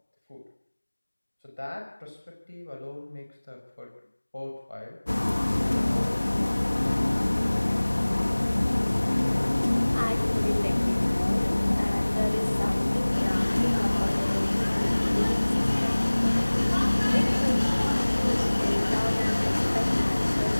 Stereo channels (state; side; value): inverted; both; correlation -1.00